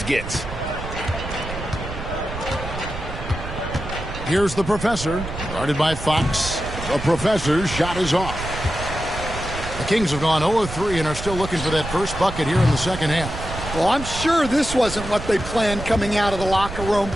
gets. Here's the professor, guarded by Fox. The professor's shot is off. The Kings have gone 0-3 and are still looking for that first bucket here in the second half. Well, I'm sure this wasn't what they planned coming out of the locker room.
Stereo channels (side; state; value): right; noise; rumble, 9 dB below the sound